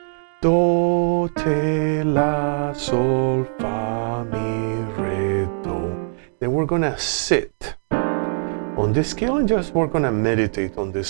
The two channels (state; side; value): silent; left; digital silence